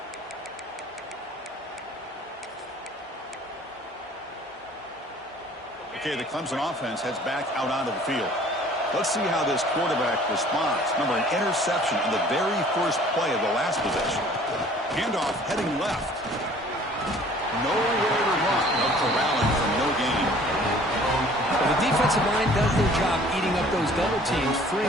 Okay, the Clemson offense heads back out onto the field. Let's see how this quarterback responds. Remember, an interception on the very first play of the last possession. Handoff heading left. Nowhere to run. No corralling for no gain. Well, the defensive line does their job eating up those double teams, freeing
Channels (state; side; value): normal; both; correlation 0.52